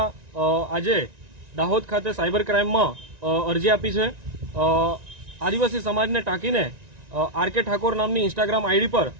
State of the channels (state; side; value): late; left; 1.9 ms